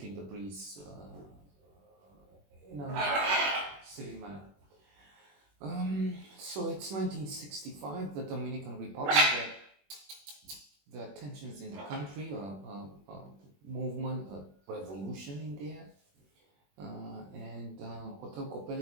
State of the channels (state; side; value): late; left; 21 ms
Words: the breeze in a silly manner. So it's 1965, the Dominican Republic. The tensions in the country, a movement, a revolution in there. And Hotel